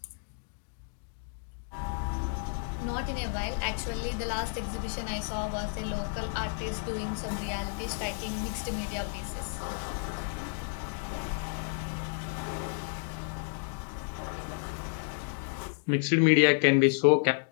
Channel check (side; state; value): right; silent; digital silence